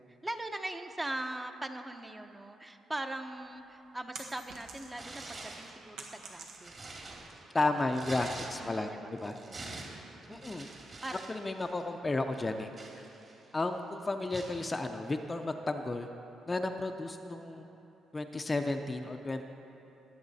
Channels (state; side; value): normal; both; correlation 0.92